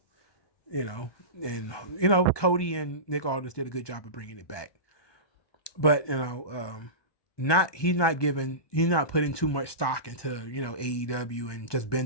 You know, and you know Cody and Nick Aldis did a good job of bringing it back, but you know, he's not putting too much stock into, you know, AEW and just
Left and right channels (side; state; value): right; late; 1.2 ms